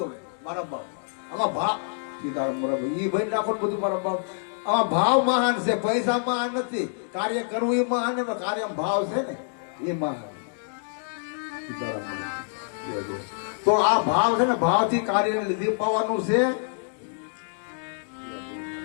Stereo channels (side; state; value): right; silent; digital silence